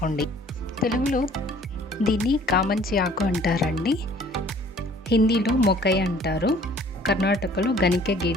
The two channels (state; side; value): normal; both; correlation 0.54